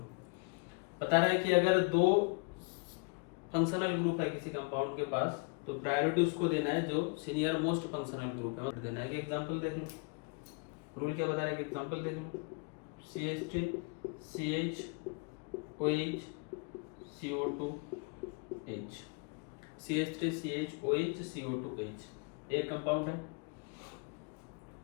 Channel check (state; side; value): quieter; right; 33.3 dB